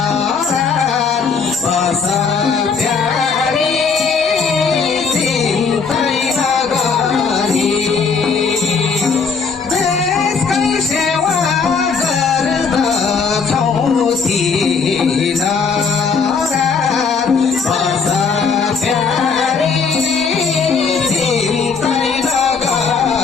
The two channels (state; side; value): quieter; right; 5.3 dB